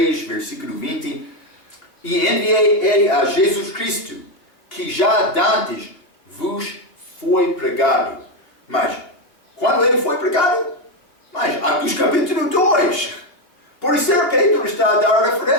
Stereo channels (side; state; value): right; late; 2.8 ms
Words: versículo 20. E enviei ele a Jesus Cristo, que já dantes vos foi pregado. Mas, quando ele foi pregado? Mas, Atos capítulo 2. Por isso, Pedro está a dar